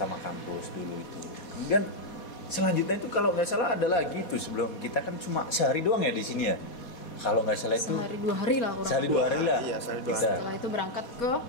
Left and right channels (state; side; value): late; right; 4.2 ms